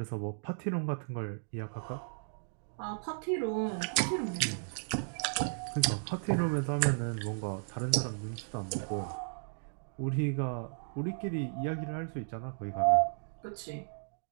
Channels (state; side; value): silent; left; digital silence